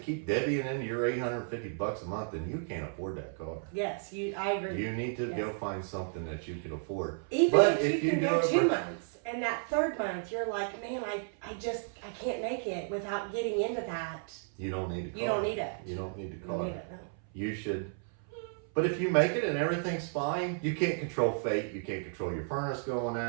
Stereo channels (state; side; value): silent; left; 56 dB below the other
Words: divvying into your $850 a month, then you can't afford that car. Yes, I agree. You need to go find something that you can afford. Even but if you can do go it 2 months, and that third month you're like, man, I can't make it without getting into that. You don't need a car. You don't need it. You don't need the You car. don't need it, no. You should. But if you make it and everything's fine, you can't control fate. You can't control your furnace going